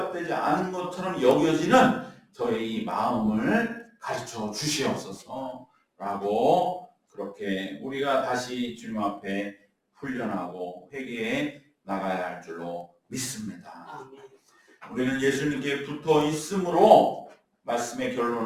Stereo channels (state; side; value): identical; both; correlation 1.00